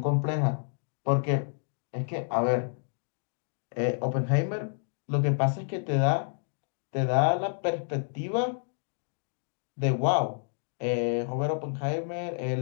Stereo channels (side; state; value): right; silent; digital silence